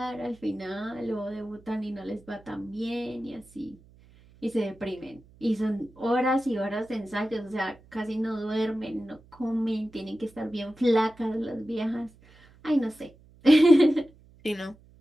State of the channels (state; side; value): noise; right; hum, 26 dB below the sound